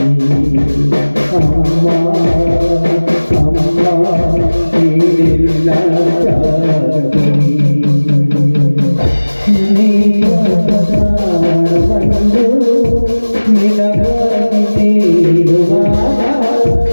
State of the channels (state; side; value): inverted; both; correlation -1.00